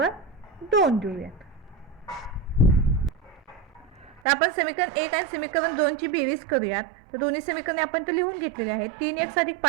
2 देऊयात. तर आपण समीकरण 1 आणि समीकरण 2 ची बेरीज करूयात. तर दोन्ही समीकरणे आपण तर लिहून घेतलेली आहेत. 3x अधिक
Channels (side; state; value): left; drops out; at 4.2 s